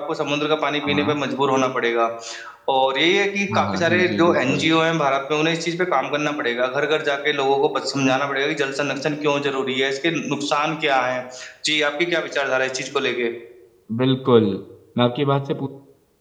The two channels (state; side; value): identical; both; correlation 1.00